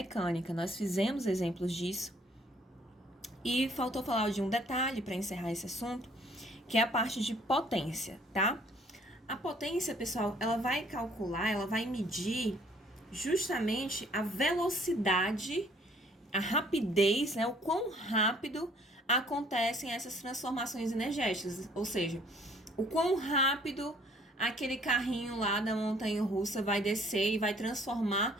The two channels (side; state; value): both; normal; correlation 0.59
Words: nós fizemos exemplos disso. E faltou falar de um detalhe para encerrar esse assunto, que é a parte de potência, tá? A potência, pessoal, ela vai calcular, ela vai medir justamente a velocidade, a rapidez, né, o quão rápido acontecem essas transformações energéticas, ou seja, o quão rápido aquele carrinho lá da montanha-russa vai descer e vai